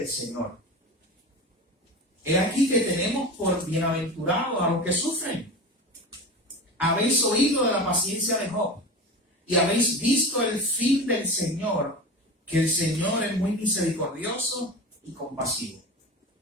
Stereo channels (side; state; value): both; normal; correlation 0.30